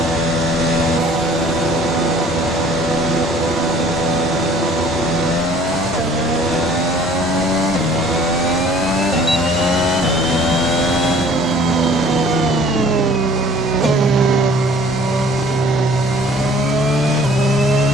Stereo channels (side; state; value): both; normal; correlation 0.53